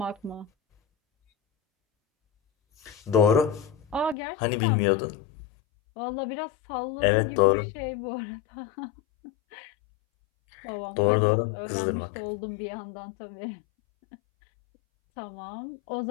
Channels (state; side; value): drops out; right; at 4.2 s